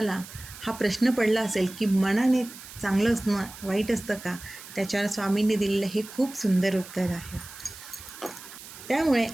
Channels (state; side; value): noise; right; hiss, 15 dB below the sound